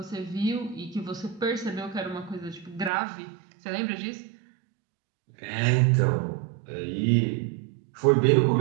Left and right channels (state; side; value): drops out; left; at 2.9 s